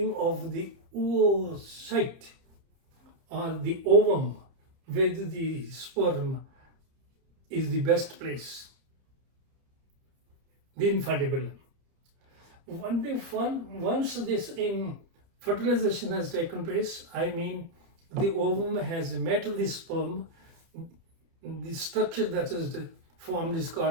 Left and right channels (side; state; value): left; late; 30 ms